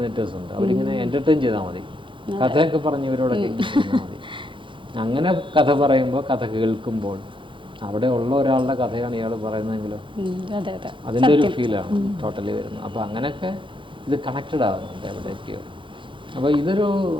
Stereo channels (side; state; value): left; late; 0.24 ms